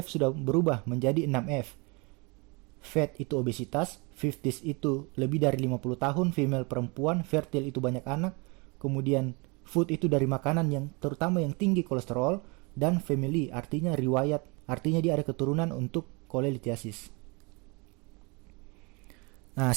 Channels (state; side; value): quieter; left; 29.4 dB